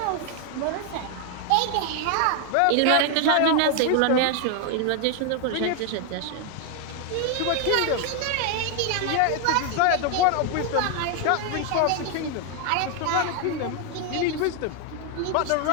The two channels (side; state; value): both; different; correlation 0.01